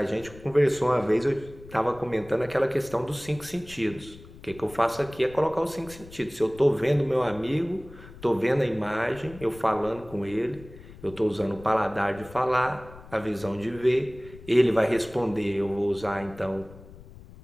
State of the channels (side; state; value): left; noise; rumble, 19 dB below the sound